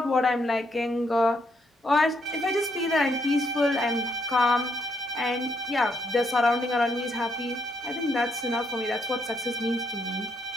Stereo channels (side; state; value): both; normal; correlation 0.74